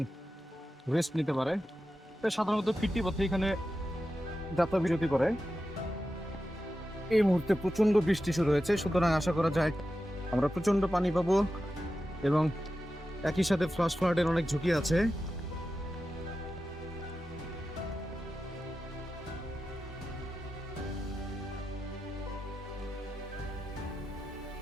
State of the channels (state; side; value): normal; both; correlation 0.91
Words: রেস্ট নিতে পারে। সাধারণত ফিরতি পথে এখানে যাত্রা বিরতি করে। এই মুহূর্তে প্রচন্ড বৃষ্টি শুরু হয়েছে, সুতরাং আশা করা যায় আমরা প্রচন্ড পানি পাবো এবং একই সাথে ফ্লাশ ফ্লাডের অনেক ঝুঁকি আছে।